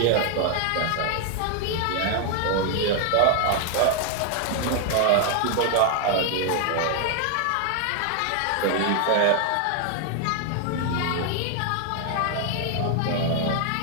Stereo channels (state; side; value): different; both; correlation 0.00